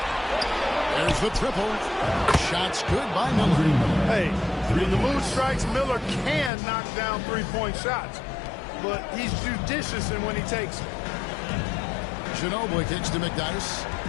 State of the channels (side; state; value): right; drops out; at 6.5 s